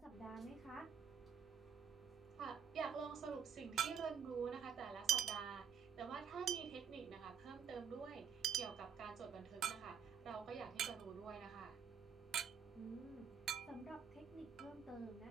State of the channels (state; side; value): quieter; left; 7.2 dB